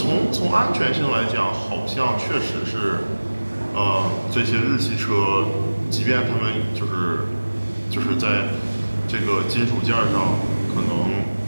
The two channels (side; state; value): both; inverted; correlation -1.00